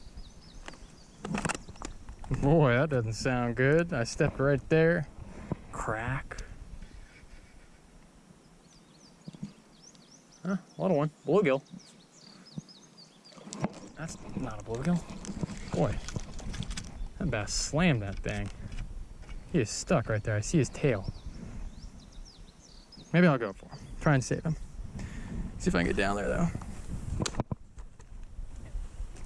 Boy, that doesn't sound good. I stepped right there. Crack. Huh, little one. Bluegill. That's not a bluegill. Boy, that bass slammed that thing. He is stuck right there. I see his tail. Maybe I'll go for him. Try and save him. See if I can get down there, though.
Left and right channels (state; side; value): identical; both; correlation 1.00